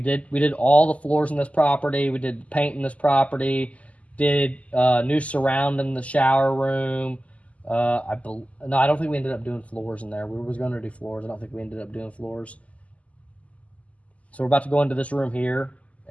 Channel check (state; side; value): late; right; 0.068 ms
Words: did all the floors in this property. We did paint in this property. Did new surround in the shower room. I don't think we ended up doing floors in there. We was going to do floors. I don't think we ended up doing floors. So we're about to go into this room here,